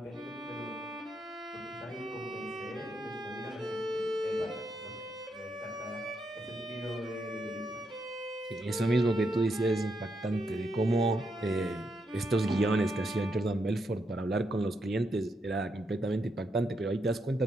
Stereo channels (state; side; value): normal; both; correlation 0.80